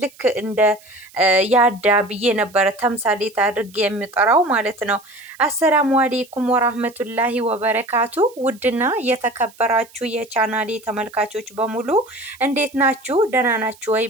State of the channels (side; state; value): right; noise; hiss, 25 dB below the sound